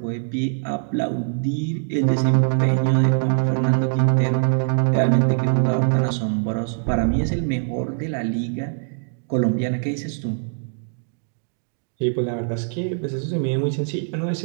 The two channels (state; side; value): silent; left; digital silence